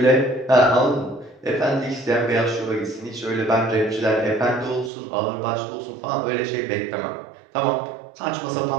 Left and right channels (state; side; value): drops out; left; at 4.9 s